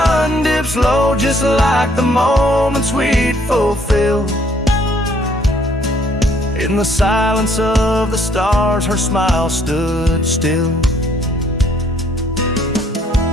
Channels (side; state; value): both; normal; correlation 0.64